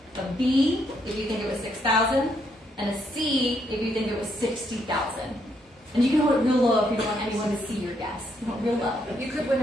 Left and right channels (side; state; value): both; normal; correlation 0.75